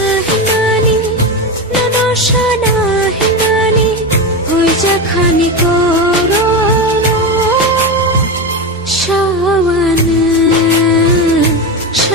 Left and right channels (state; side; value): normal; both; correlation 0.17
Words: হিমানি ননসানা হিমানি হইজা খানি করং সাওয়ানে